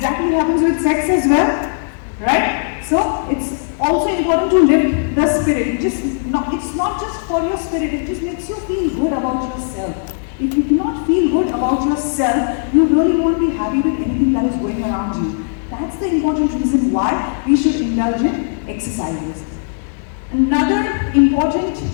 happens with sex as well, right? So, it's also important to lift the spirit. It's not just for your spirit, it just makes you feel good about yourself. If you do not feel good about yourself, you really won't be happy with anything that is going around you. That's the important reason why we should indulge in exercises. Another important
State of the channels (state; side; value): silent; right; digital silence